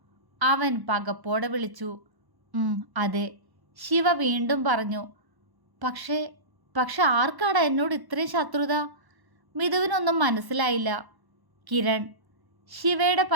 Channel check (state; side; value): late; left; 1.1 ms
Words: അവൻ പകപ്പോടെ വിളിച്ചു. അതെ, ശിവ വീണ്ടും പറഞ്ഞു. പക്ഷേ ആർക്കാടാ എന്നോട് ഇത്രയും ശത്രുത? മിഥുവിനൊന്നും മനസ്സിലായില്ല. കിരൺ. ശിവയുടെ